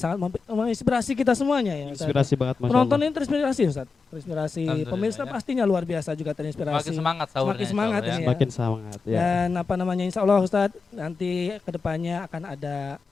sangat menginspirasi kita semuanya ya Ustadz. Inspirasi banget, Masya Penonton Allah. ini terinspirasi Ustadz, terinspirasi, Alhamdulillah, pemirsa ya. pastinya luar biasa juga terinspirasi. Semakin semangat sahurnya. Semakin semangat insya Allah, ini. ya. Semakin semangat ya. Dan insya Allah Ustadz, nanti kedepannya akan ada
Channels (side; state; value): right; quieter; 4.6 dB